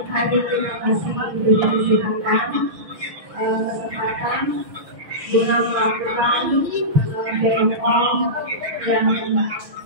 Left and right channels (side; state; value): left; late; 6.3 ms